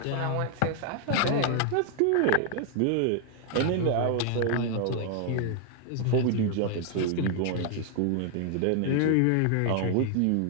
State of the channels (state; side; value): different; both; correlation 0.00